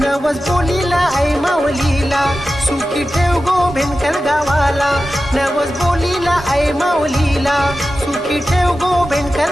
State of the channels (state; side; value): normal; both; correlation 0.93